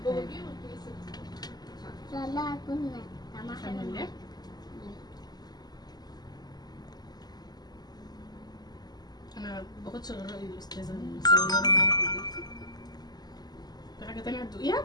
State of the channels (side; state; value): right; late; 0.20 ms